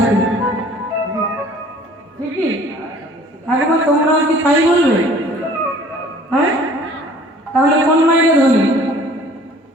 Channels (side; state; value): both; normal; correlation 0.51